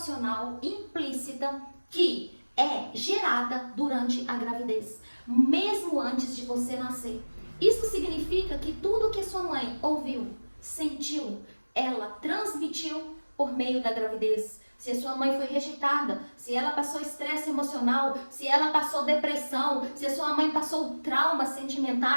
implícita que é gerada durante a gravidez, mesmo antes de você nascer. Isso significa que tudo que sua mãe ouviu, sentiu, ela transmitiu por meio da gravidez. Se a sua mãe foi rejeitada, se ela passou estresse emocional, se ela passou depressão, se a sua mãe passou traumas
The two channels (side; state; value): both; inverted; correlation -1.00